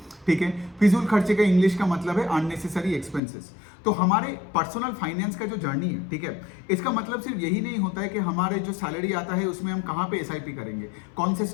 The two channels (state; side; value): drops out; right; at 3.2 s